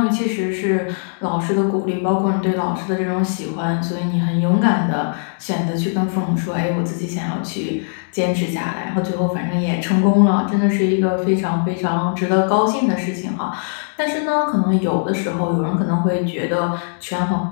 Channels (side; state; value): right; silent; digital silence